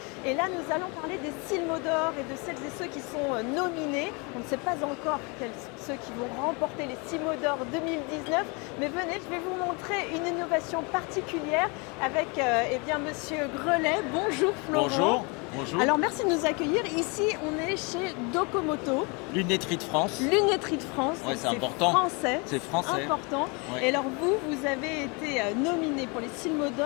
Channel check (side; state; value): right; quieter; 30.5 dB